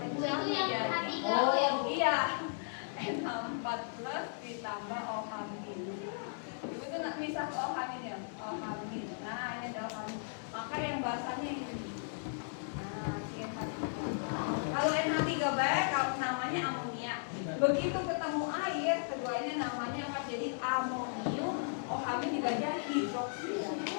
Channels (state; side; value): silent; right; 54 dB below the other